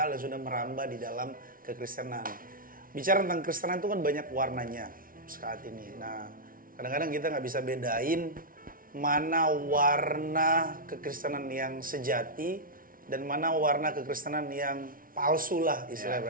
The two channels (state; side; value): late; left; 0.41 ms